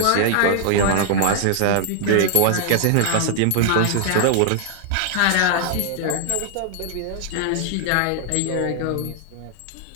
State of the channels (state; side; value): different; both; correlation 0.00